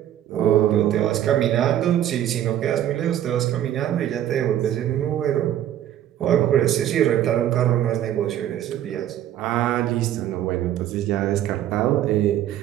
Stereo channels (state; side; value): quieter; left; 11.6 dB